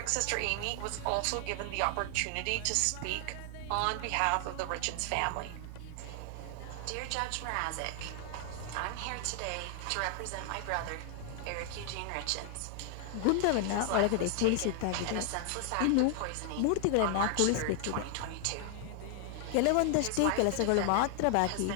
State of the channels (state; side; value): different; both; correlation 0.00